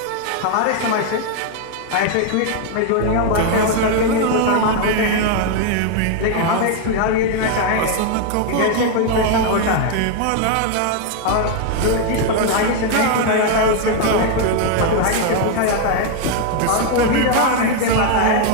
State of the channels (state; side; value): different; both; correlation 0.01